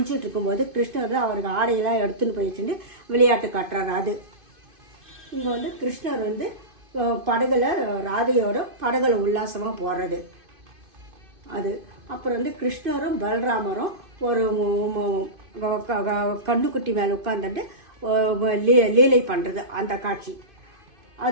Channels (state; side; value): late; left; 2.5 ms